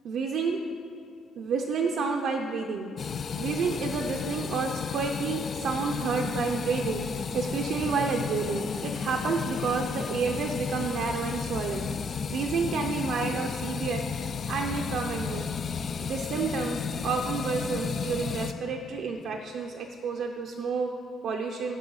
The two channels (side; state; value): both; normal; correlation 0.67